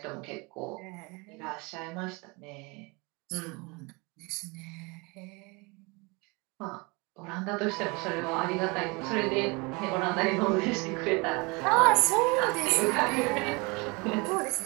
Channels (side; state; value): left; quieter; 27.6 dB